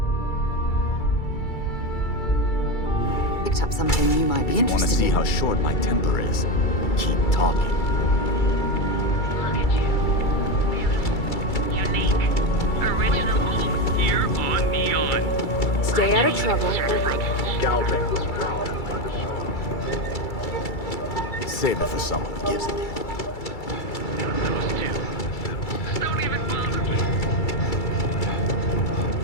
Picked up something you might be Want to interested see in. how short my temper is? Keep talking. Look at you. Beautiful. Unique. Original. Here on Neon. Stay out of trouble. Save it for someone who gives it.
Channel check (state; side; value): late; right; 2.3 ms